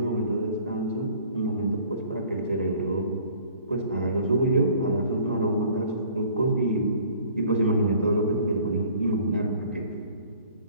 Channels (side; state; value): both; inverted; correlation -0.53